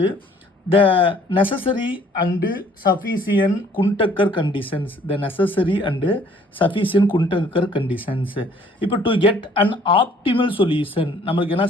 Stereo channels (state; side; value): normal; both; correlation 0.58